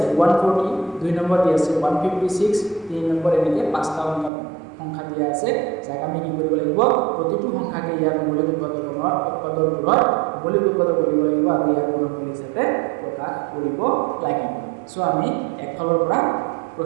140, 2 নম্বৰ দি আছে 156, 3 নম্বৰ এনেকৈ 5টা সংখ্যা দিয়া আছে, যাক আমি কি কৰিব লাগিব, প্ৰতিটো সংখ্যাকে ইয়াৰ মৌলিক উৎপাদকবোৰৰ মৌলিক উৎপাদক কৰিব লাগিব আৰু ইয়াৰ গুণফল হিচাপে প্ৰকাশ কৰিব লাগিব। সো আমি একফালৰ পৰা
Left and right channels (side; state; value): left; drops out; at 4.3 s